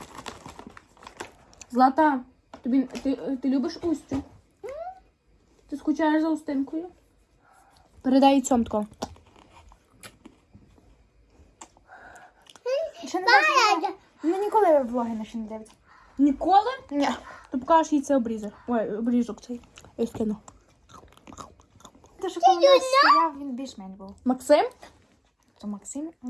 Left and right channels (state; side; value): identical; both; correlation 1.00